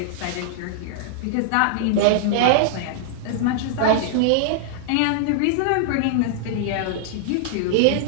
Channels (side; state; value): both; different; correlation -0.01